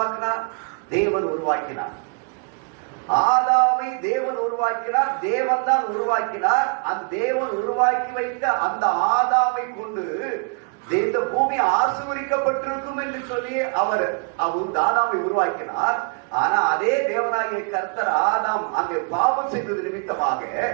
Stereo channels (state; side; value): quieter; left; 37.7 dB